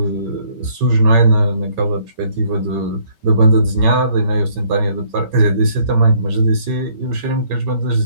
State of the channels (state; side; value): late; left; 5.3 ms